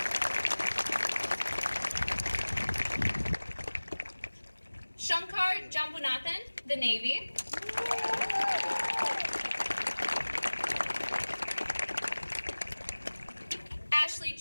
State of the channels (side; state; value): both; inverted; correlation -1.00